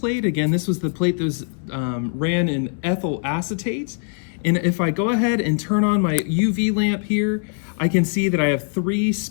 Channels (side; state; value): right; silent; 64 dB below the other